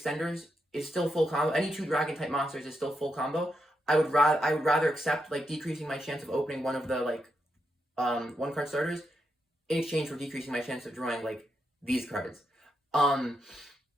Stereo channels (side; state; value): both; normal; correlation 0.83